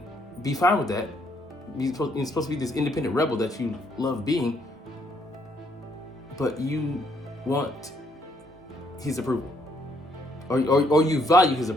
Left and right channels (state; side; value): normal; both; correlation 0.70